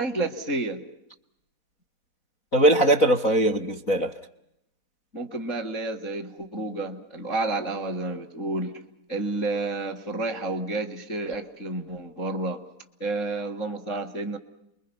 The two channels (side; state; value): right; late; 4.0 ms